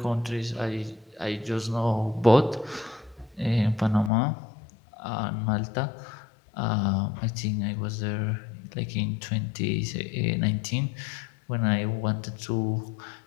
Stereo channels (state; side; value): drops out; right; at 4.1 s